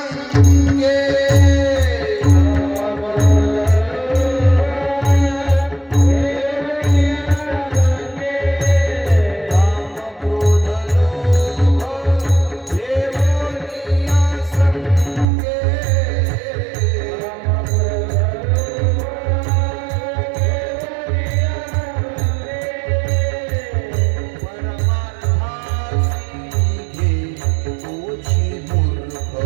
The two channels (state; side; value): drops out; left; at 15.2 s